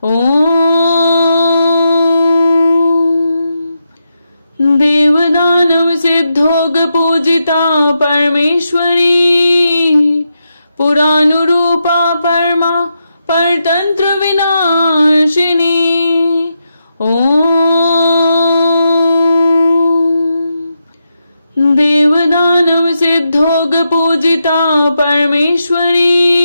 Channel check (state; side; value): inverted; both; correlation -0.85